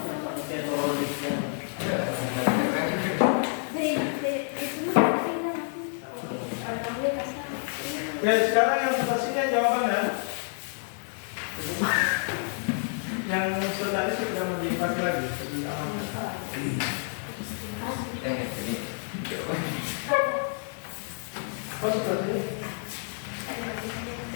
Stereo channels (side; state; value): right; silent; 59 dB below the other